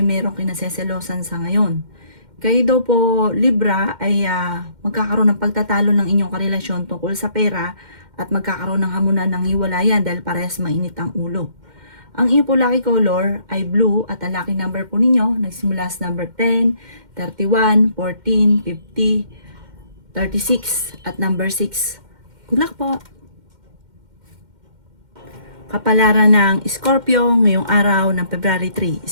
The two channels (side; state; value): left; late; 2.1 ms